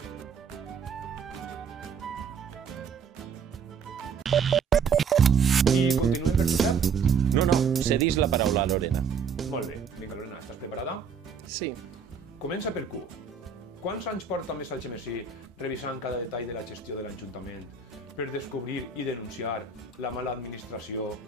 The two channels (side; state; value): left; quieter; 5.9 dB